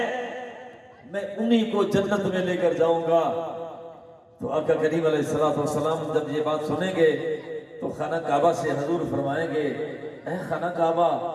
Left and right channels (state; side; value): identical; both; correlation 1.00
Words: میں انہی کو جنت میں لے کر جاؤں گا۔ تو آقا کریم علیہ السلام جب یہ بات سنیں گے تو خانہ کعبہ سے حضور فرمائیں گے، اے خانہ کعبہ